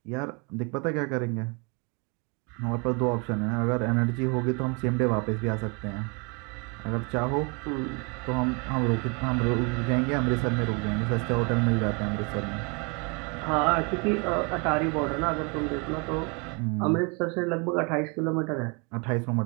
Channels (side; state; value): left; quieter; 32.5 dB